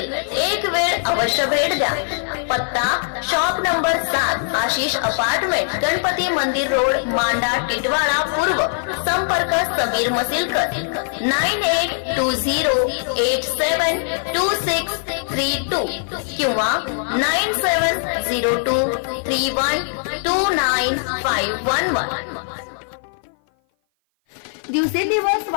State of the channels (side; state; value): right; silent; 56 dB below the other